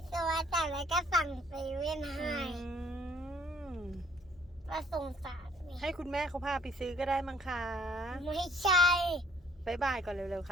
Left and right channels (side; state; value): both; normal; correlation 0.62